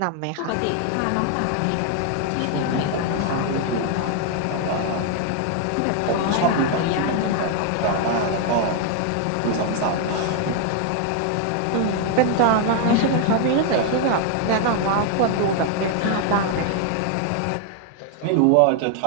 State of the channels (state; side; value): different; both; correlation 0.00